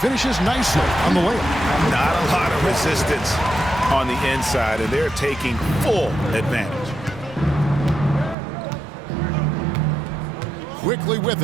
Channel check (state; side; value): drops out; left; at 8.3 s